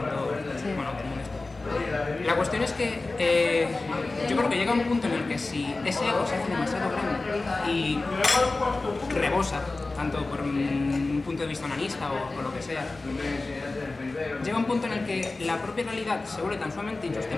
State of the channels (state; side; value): quieter; right; 3.3 dB